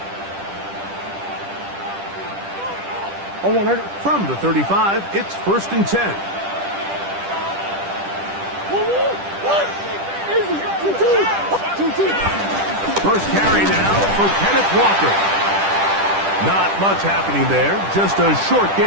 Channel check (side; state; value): left; late; 10 ms